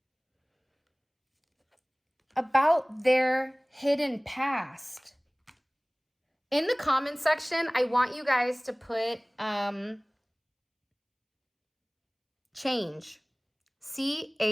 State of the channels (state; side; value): identical; both; correlation 1.00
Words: about their hidden past. In the comment section, I want you guys to put change.